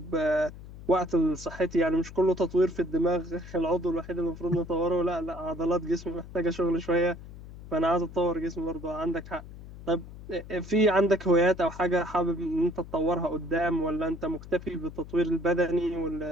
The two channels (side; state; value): left; noise; hum, 15 dB below the sound